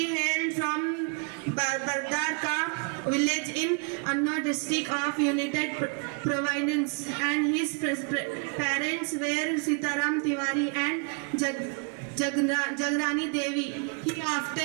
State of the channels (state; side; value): quieter; left; 37.6 dB